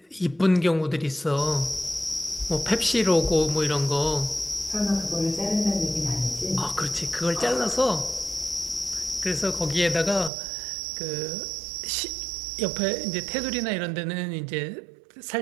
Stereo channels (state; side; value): drops out; left; at 10.3 s